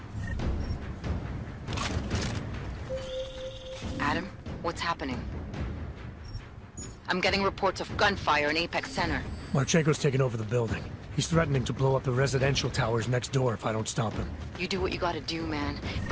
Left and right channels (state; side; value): identical; both; correlation 1.00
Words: Adam, what's happening? I'm getting reports of gunfire in Apex Center. Marchenko's taken over the building. He's threatening to blow up the residential towers next door if I don't stop him. You do what you gotta do, man.